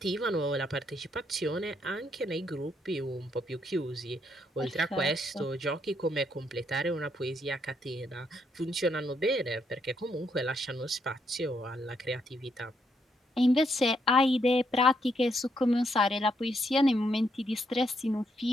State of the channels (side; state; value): both; normal; correlation 0.75